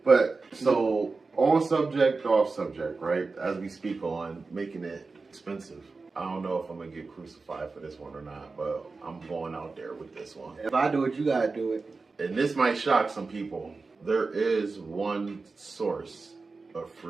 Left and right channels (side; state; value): left; quieter; 4.0 dB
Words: But so on subject, off subject, right? As we speak on making it expensive. I don't know if I'm gonna get crucified for this one or not, but I'm going out there with this one. If I do it, you gotta do it. And this might shock some people. There is one source of